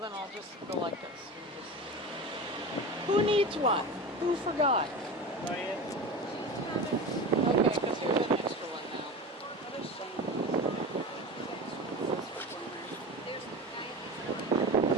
I'll just go like this. Who needs one? Who forgot? Okay, because here's an extra one now.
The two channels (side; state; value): both; normal; correlation 0.29